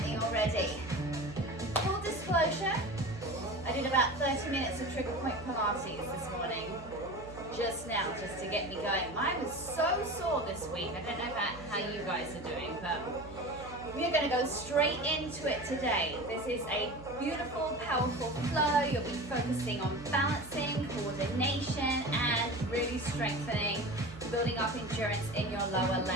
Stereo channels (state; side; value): noise; right; hum, 15 dB below the sound